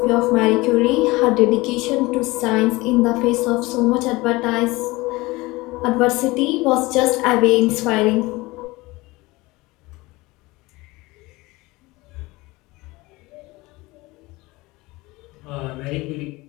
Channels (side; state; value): right; quieter; 21.8 dB